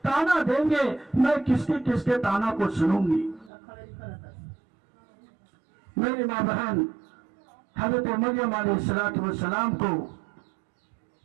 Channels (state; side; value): drops out; left; at 3.5 s